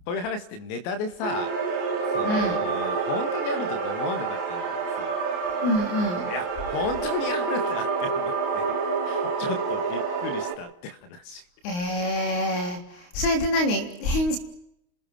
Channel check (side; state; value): right; late; 28 ms